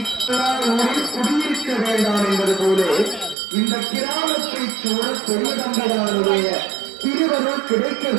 குடியிருக்க வேண்டாம் என்பது போல இந்த கிராமத்தை சூழ பெரிய தம்பிரானுடைய திருவருள் கிடைக்க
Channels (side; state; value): left; drops out; at 3.4 s